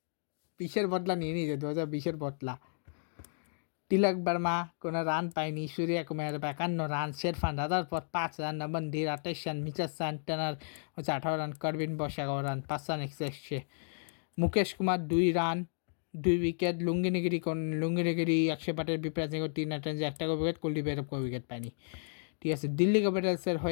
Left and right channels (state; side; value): silent; right; digital silence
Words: 20-এর বদলা নিয়ে নিয়েছে, 2020-এর বদলা। তিলক বর্মা কোনো রান পায়নি, সূর্য কুমার 51 রান, শেরফান রাজার পর 5 রান, নমনদীর 28 রান, মিচেল স্যান্টনার হচ্ছে 18 run, Corbin Bosch 11 run, 5 run এক্সেসে। Mukesh Kumar 2 run, 2 wicket. লুঙ্গিনিগিরি 100 পাটের বিপ্রাজ 3 রান, 1টা উইকেট। কুলদীপ যাদব কোনো উইকেট পায়নি। ঠিক আছে, দিল্লি ক্যাপিটালসের